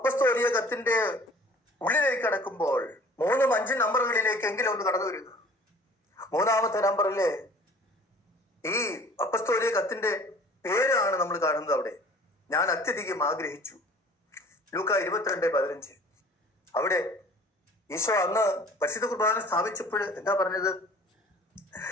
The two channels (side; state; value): both; normal; correlation 0.48